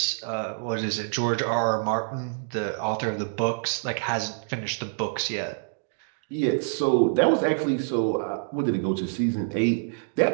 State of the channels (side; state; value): left; silent; digital silence